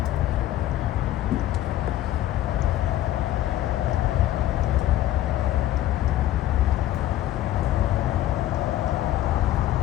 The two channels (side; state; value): right; quieter; 13.4 dB